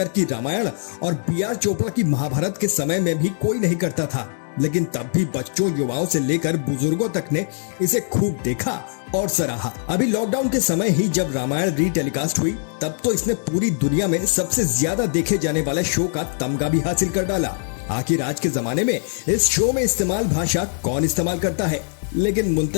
की रामायण और B.R. चोपड़ा की महाभारत के समय में भी कोई नहीं करता था, लेकिन तब भी बच्चों, युवाओं से लेकर बुजुर्गों तक ने इसे खूब देखा और सराहा। अभी लॉकडाउन के समय ही जब रामायण रीटेलीकास्ट हुई, तब तो इसने पूरी दुनिया में सबसे ज्यादा देखे जाने वाले शो का तमगा भी हासिल कर डाला। आखिर आज के जमाने में इस शो में इस्तेमाल भाषा कौन इस्तेमाल करता है? लेकिन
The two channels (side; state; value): right; silent; digital silence